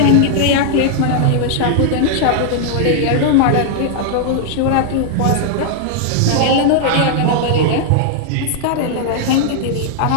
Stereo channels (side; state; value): both; different; correlation -0.01